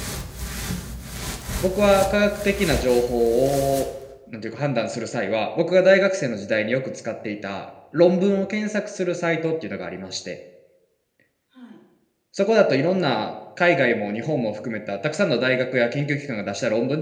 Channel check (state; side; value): identical; both; correlation 1.00